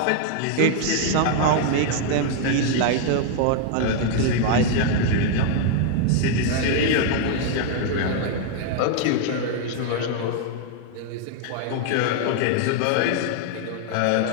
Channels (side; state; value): both; different; correlation 0.00